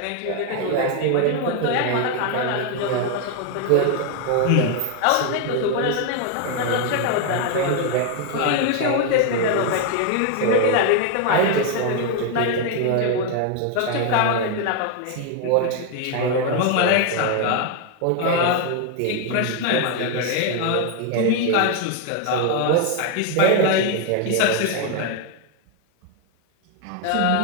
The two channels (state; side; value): different; both; correlation 0.01